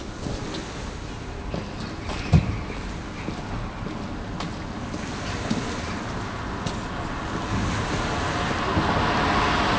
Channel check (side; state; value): both; identical; correlation 1.00